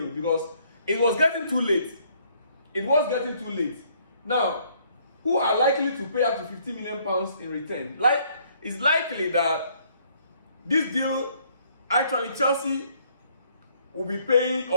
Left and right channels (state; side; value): inverted; both; correlation -0.65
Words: because it was getting too late. It was getting too late. Now, who are likely to pay up to £50 million in return? It's likely that this deal, actually Chelsea will be paying